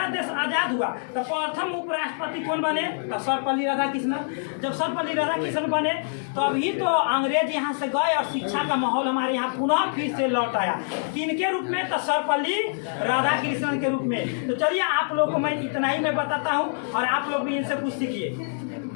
देश आज़ाद हुआ तो प्रथम उपराष्ट्रपति कौन बने? तो सर्वपल्ली राधाकृष्णन। जब सर्वपल्ली राधाकृष्णन बने तो अभी तो अंग्रेज यहाँ से गए और शिक्षा का माहौल हमारे यहाँ पुनः फिर से लौट आया। किनके रूप में? तो सर्वपल्ली राधाकृष्णन के रूप में। तो चलिए आप लोगों को मैं इतना ही मैं बताता हूँ और आप लोग भी इनसे कुछ सीखिए।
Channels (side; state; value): right; silent; digital silence